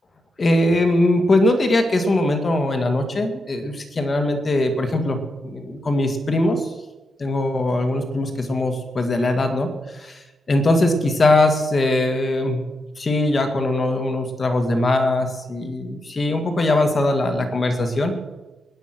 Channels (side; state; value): both; normal; correlation 0.85